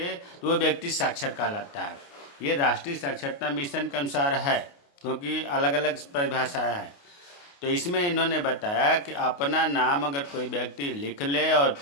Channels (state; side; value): late; right; 28 ms